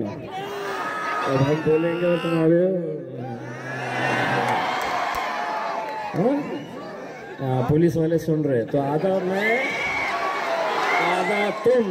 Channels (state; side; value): identical; both; correlation 1.00